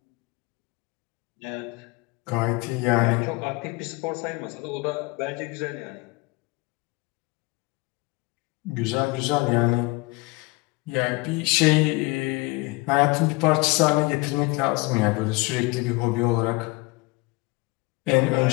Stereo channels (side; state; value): right; quieter; 24.8 dB